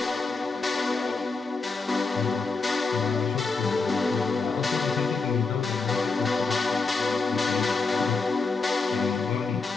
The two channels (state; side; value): quieter; right; 4.2 dB